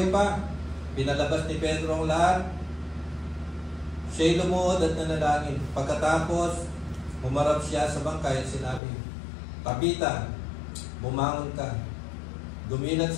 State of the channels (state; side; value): drops out; right; at 8.8 s